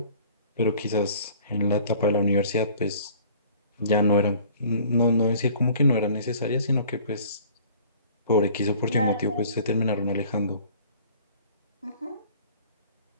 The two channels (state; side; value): inverted; both; correlation -0.50